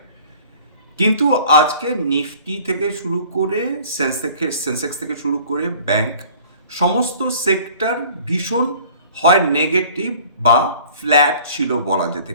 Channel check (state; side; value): inverted; both; correlation -0.49